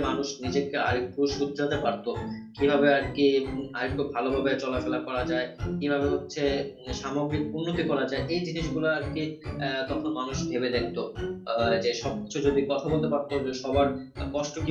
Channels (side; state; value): both; identical; correlation 1.00